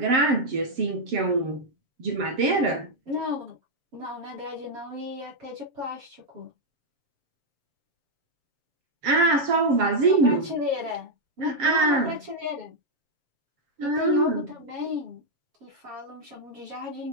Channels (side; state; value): left; late; 7.6 ms